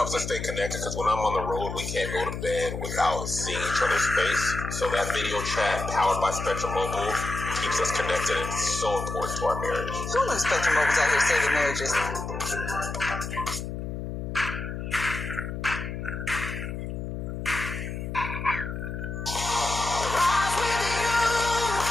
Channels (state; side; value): noise; left; hum, 6 dB below the sound